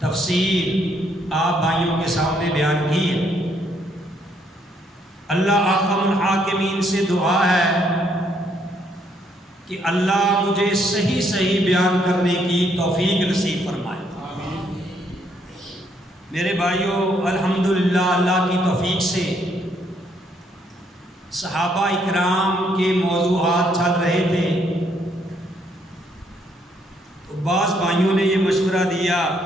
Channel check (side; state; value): both; normal; correlation 0.71